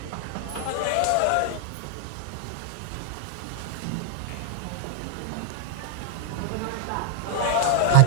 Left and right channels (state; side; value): different; both; correlation 0.00